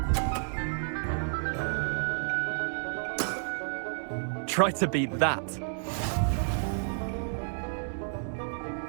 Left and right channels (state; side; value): silent; left; digital silence